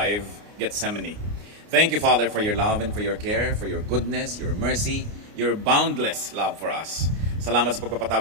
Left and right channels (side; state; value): left; late; 29 ms